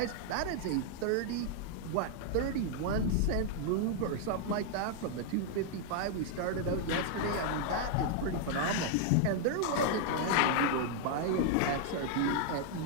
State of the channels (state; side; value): different; both; correlation 0.00